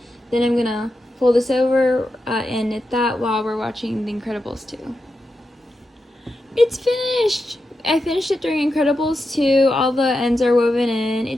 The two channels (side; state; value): both; normal; correlation 0.88